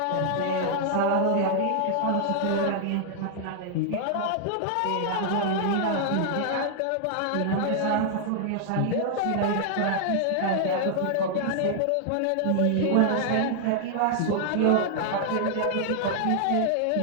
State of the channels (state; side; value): different; both; correlation 0.00